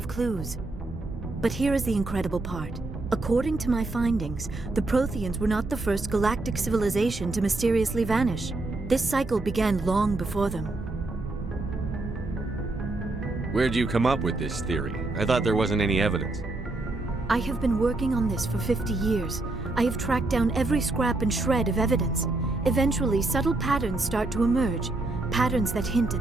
clues. But here is the incredible part. According to my findings, the Protheans were not the first galactic civilization to mysteriously vanish. This cycle began long before them. Where'd you come up with this theory? I thought there wasn't any evidence. I have been working on this for 50 years. I have tracked down every scrap and shred of evidence. Eventually, subtle patterns start to emerge, patterns that hint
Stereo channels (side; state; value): left; quieter; 3.0 dB